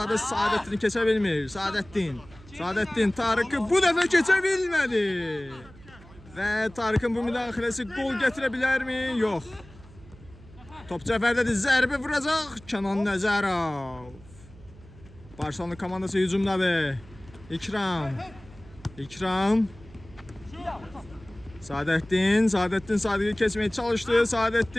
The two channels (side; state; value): right; noise; hum, 21 dB below the sound